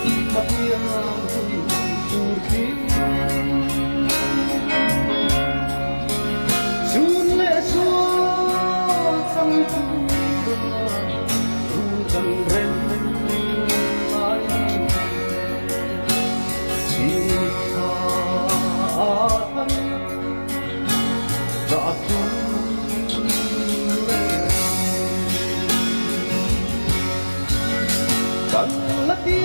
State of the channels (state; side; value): inverted; both; correlation -1.00